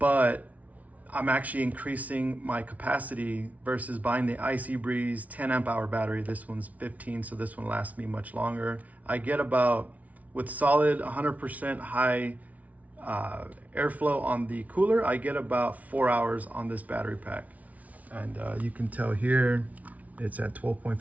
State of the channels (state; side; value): late; left; 0.070 ms